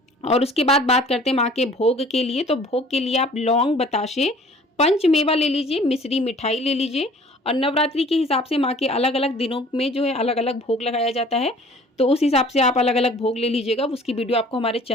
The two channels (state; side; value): normal; both; correlation 0.51